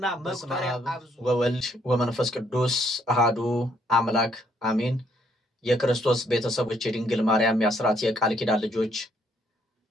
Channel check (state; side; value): normal; both; correlation 0.69